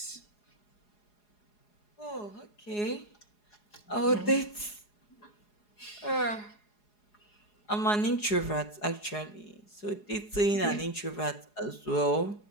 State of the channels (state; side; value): late; right; 4.8 ms